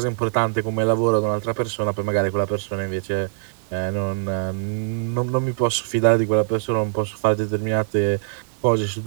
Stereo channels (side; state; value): left; silent; digital silence